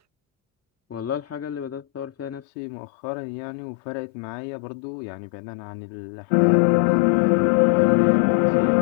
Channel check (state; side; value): drops out; right; at 2.4 s